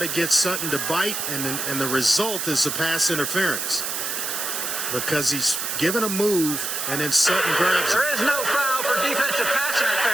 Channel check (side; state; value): right; noise; hiss, 2 dB below the sound